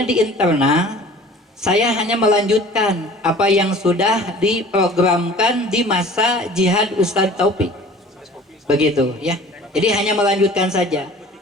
di internal saya hanya melanjutkan apa yang sudah diprogramkan di masa jihad Ustadz Taufik. Begitu ya. Jadi hanya melanjutkan saja.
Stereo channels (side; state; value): both; normal; correlation 0.46